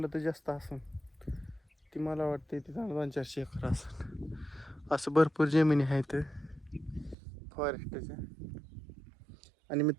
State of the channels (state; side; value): drops out; left; at 7.2 s